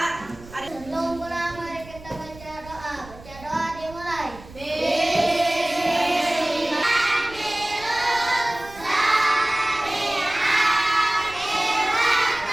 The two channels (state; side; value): noise; right; rumble, 19 dB below the sound